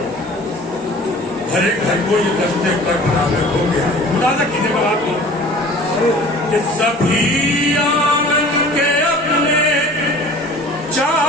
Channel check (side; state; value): both; normal; correlation 0.45